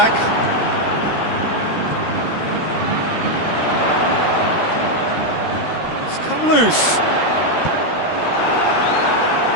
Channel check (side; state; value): right; late; 13 ms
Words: It's come loose.